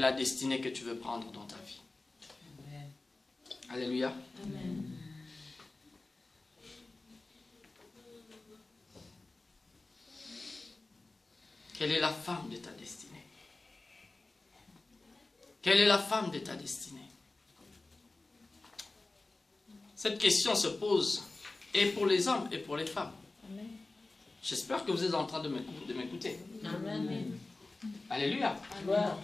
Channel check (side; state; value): right; quieter; 3.2 dB